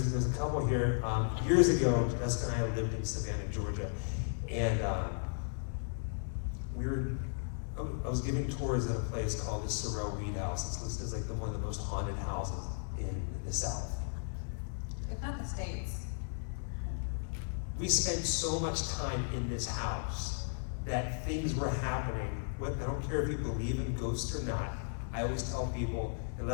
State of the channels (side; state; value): right; silent; digital silence